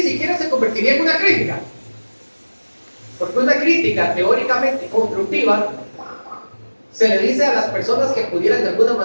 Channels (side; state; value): both; inverted; correlation -1.00